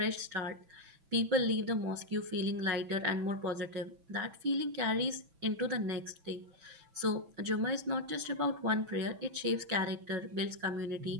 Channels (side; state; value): left; late; 6.0 ms